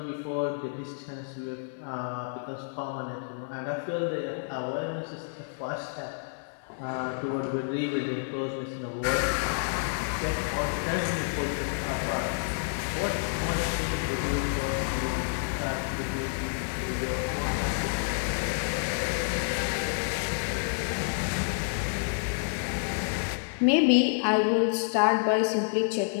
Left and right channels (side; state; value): right; silent; 58 dB below the other